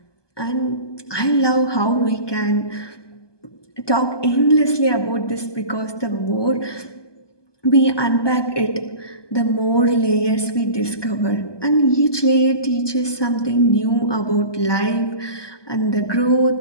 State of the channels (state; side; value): late; right; 1.2 ms